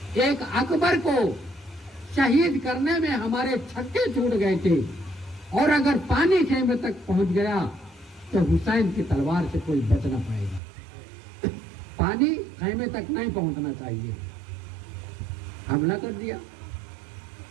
एक अकबर को शहीद करने में हमारे छक्के छूट गए थे और अगर पानी खेमे तक पहुंच गया तो हुसैन की तलवार से कोई बच ना पाएगा। पानी खेमे तक नहीं पहुंचना चाहिए। हमला कर दिया,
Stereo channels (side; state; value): left; drops out; at 10.6 s